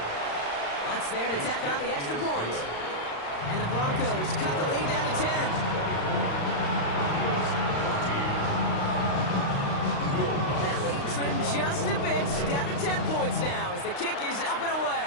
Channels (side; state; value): right; late; 35 ms